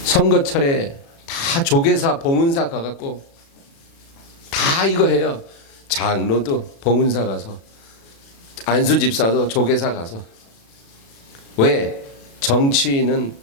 선거철에 다 조계사, 봉은사 가갖고 다 이거 해요. 장로도 봉은사 가서, 안수집사도 조계사 가서. 왜? 정치인은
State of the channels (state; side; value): late; right; 36 ms